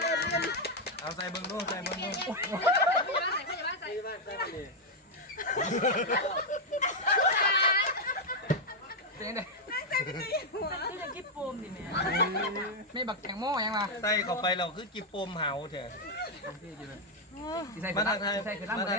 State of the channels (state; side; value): normal; both; correlation 0.00